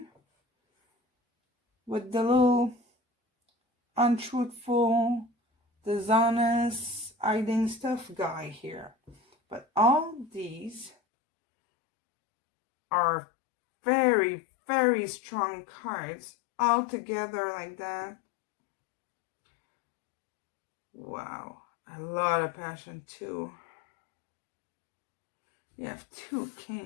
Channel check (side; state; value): right; drops out; at 11.0 s